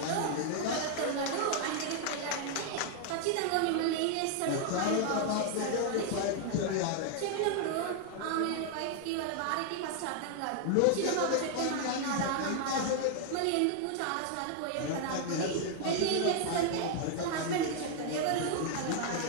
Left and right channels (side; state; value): both; different; correlation 0.00